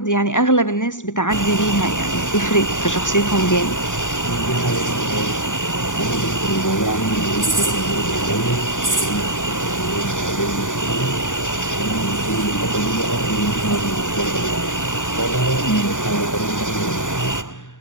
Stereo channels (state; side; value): late; right; 0.86 ms